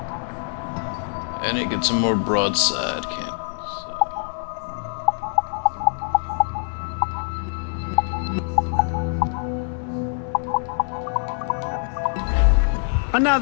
I need to get some more broadside cannons.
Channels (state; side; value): silent; right; digital silence